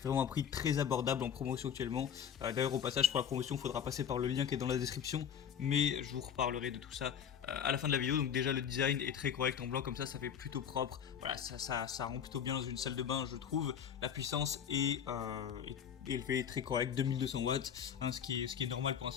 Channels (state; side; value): quieter; right; 8.3 dB